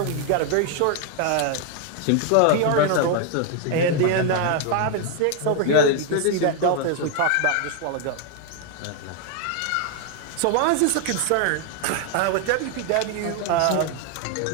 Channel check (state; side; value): different; both; correlation 0.01